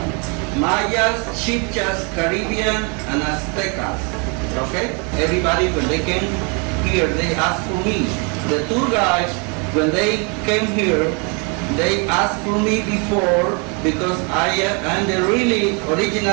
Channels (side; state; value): left; quieter; 33.9 dB